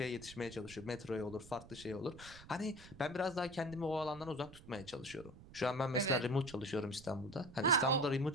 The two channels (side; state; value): right; noise; rumble, 18 dB below the sound